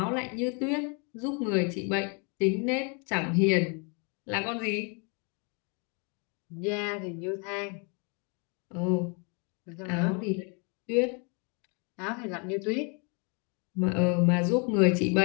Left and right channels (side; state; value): right; quieter; 35.3 dB